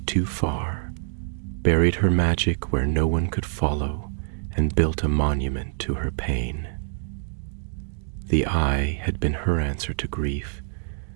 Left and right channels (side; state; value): left; silent; digital silence